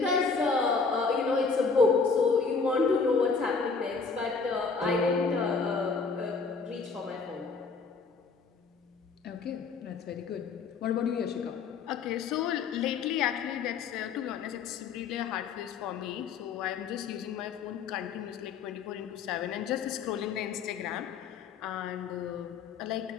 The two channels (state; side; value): quieter; right; 4.9 dB